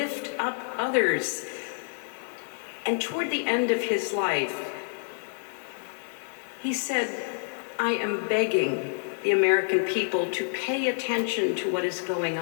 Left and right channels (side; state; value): right; silent; digital silence